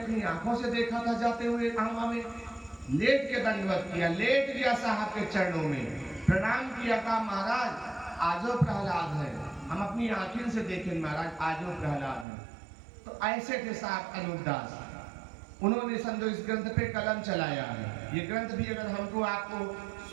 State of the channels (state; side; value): drops out; left; at 12.2 s